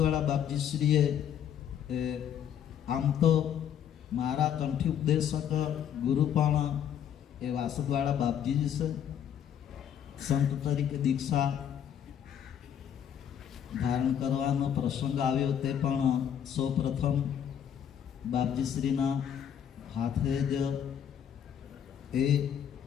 બાપજીશ્રીએ આમ તો મારા કંઠી ઉપદેશક ગુરુ પણ એ વાસદવાળા બાપજી જ છે. સંત તરીકે દીક્ષા ધારણ કરવાનો પ્રસંગ આવ્યો તે પણ સૌ પ્રથમ બાપજીશ્રીના હાથે જ એ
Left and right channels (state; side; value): quieter; right; 9.2 dB